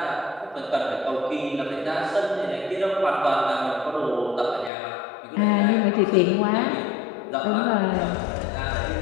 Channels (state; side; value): drops out; right; at 4.7 s